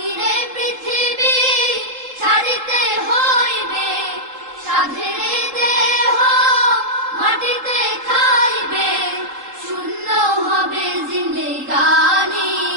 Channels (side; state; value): left; late; 3.8 ms